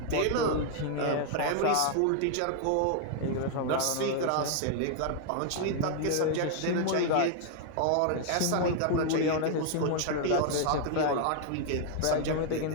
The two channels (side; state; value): both; different; correlation 0.00